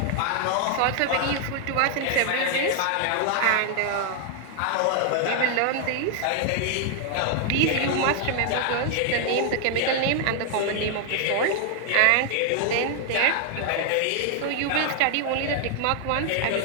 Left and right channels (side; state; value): both; different; correlation 0.00